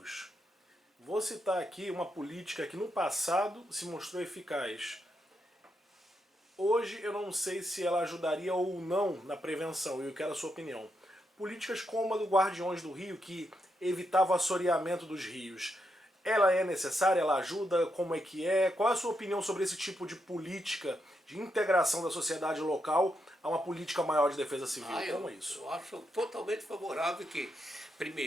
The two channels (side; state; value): both; normal; correlation 0.82